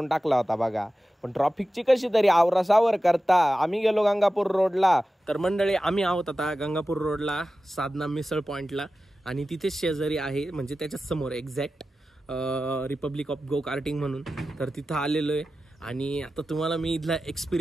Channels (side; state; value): both; normal; correlation 0.94